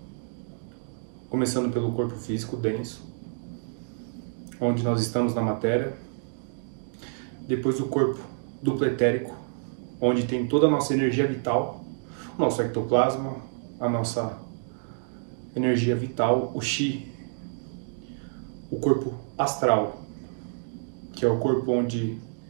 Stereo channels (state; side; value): silent; left; digital silence